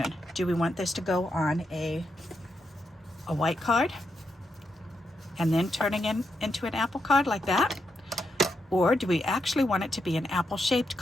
Do we want this to go on a white card and then turning into an apple card like that? Or do we actually want it to be an apple-shaped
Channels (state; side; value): normal; both; correlation 0.83